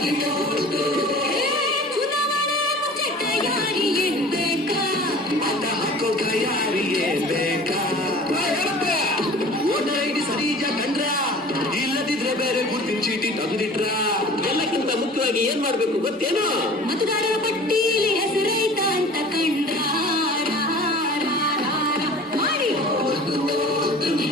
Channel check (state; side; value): normal; both; correlation 0.43